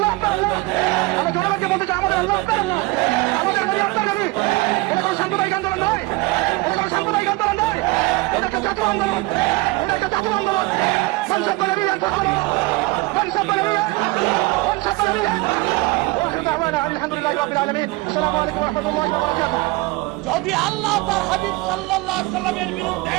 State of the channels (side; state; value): left; quieter; 22.3 dB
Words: আপনার আল্লাহ। আমরা জনগণকে বলতে চাই, আমাদের আল্লাহ আপনার আল্লাহ, আমাদের নবী আপনার নবী। এটা কোনো সাম্প্রদায়িক আন্দোলন নয়, এটা কোনো সাম্প্রদায়িক আন্দোলন নয়, এটা একটা জাতীয় আন্দোলন, এটা একটা জাতীয় আন্দোলন। মানুষের করে নিয়ে মানুষের করে নিয়ে মানুষের করে নিয়ে আলহামদুলিল্লাহ রাব্বিল আলামিন। আসসালামু আলাইকুম ওয়া রাহমাতুল্লাহি ওয়া বারাকাতুহু। যদি আল্লাহ তার হাবিব সাল্লাল্লাহু আলাইহি সাল্লামের